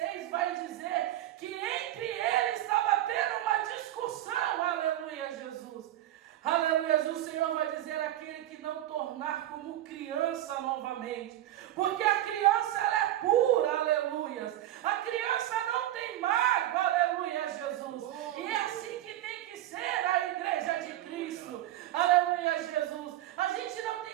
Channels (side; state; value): left; quieter; 13.6 dB